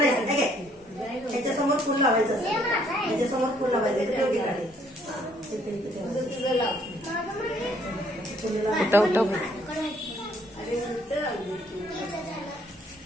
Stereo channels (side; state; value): both; normal; correlation 0.65